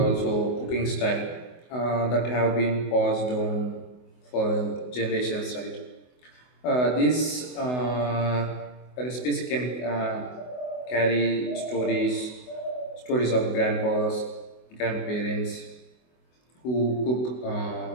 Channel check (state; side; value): late; right; 24 ms